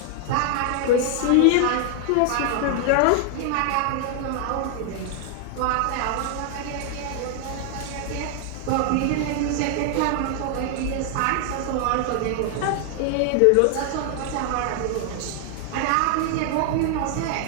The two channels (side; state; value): both; different; correlation 0.00